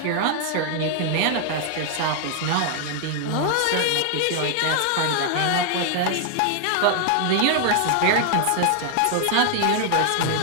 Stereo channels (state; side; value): different; both; correlation 0.00